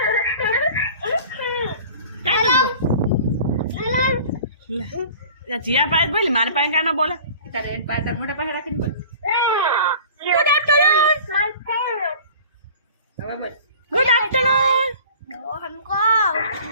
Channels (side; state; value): both; inverted; correlation -0.44